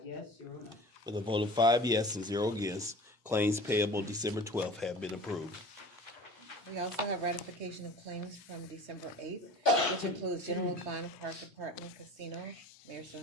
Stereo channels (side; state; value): both; normal; correlation 0.41